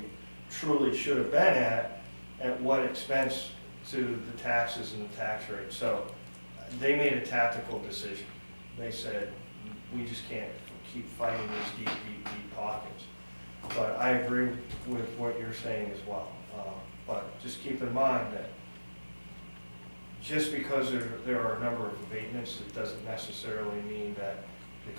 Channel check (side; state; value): both; inverted; correlation -1.00